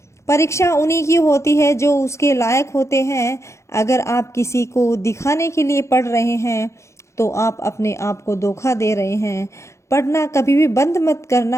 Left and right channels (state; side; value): late; right; 0.14 ms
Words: परीक्षा उन्हीं की होती है जो उसके लायक होते हैं। अगर आप किसी को दिखाने के लिए पढ़ रहे हैं तो आप अपने आप को धोखा दे रहे हैं। पढ़ना कभी भी बंद मत